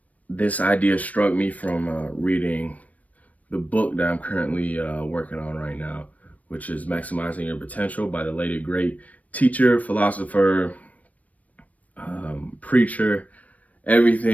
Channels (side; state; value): right; late; 0.070 ms